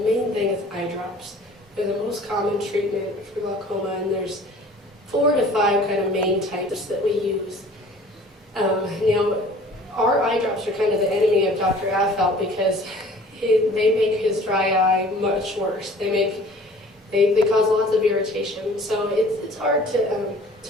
thing is eye drops. They're the most common treatment for glaucoma, and there's 4 to 5 kind of main types that we use. Now, our eye drops are kind of the enemy of Dr. Affelt because they make his dry eye much worse. They cause lots of irritation. So it's hard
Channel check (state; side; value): normal; both; correlation 0.49